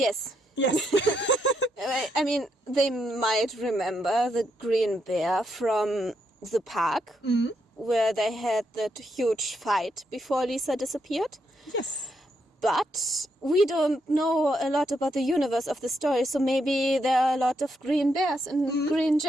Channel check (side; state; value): both; normal; correlation 0.79